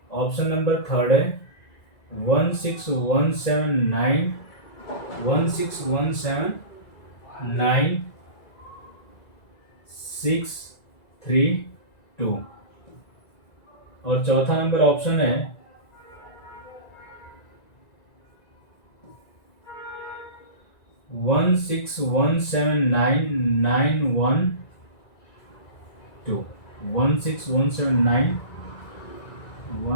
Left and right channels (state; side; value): late; right; 1.9 ms